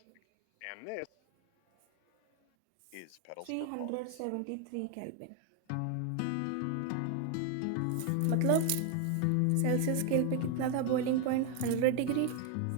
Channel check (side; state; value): both; different; correlation 0.01